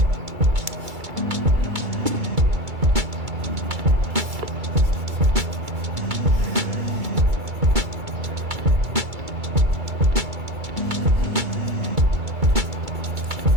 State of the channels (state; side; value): late; left; 2.3 ms